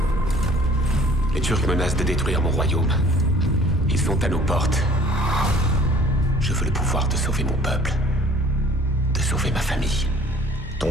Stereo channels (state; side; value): normal; both; correlation 0.53